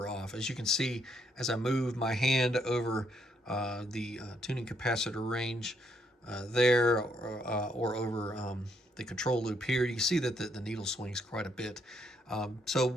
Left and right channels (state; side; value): normal; both; correlation 0.73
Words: off. As you can see, as I move my hand over the tuning capacitor range there, or over the control loop here, you can see that the needle swings quite a bit. So